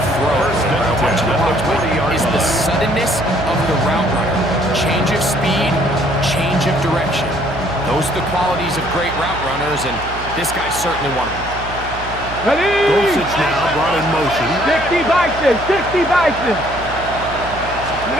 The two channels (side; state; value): right; noise; hum, 12 dB below the sound